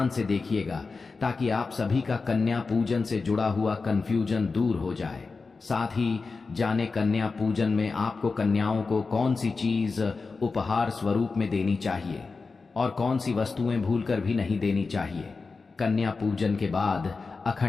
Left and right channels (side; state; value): right; quieter; 4.3 dB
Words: से देखिएगा ताकि आप सभी का कन्या पूजन से जुड़ा हुआ कंफ्यूजन दूर हो जाए। साथ ही जाने कन्या पूजन में आपको कन्याओं को कौन सी चीज उपहार स्वरूप में देनी चाहिए और कौन सी वस्तुएं भूलकर भी नहीं देनी चाहिए। कन्या पूजन के बाद